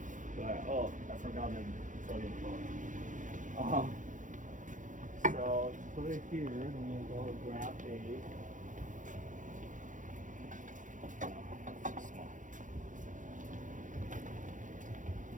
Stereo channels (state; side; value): late; left; 0.37 ms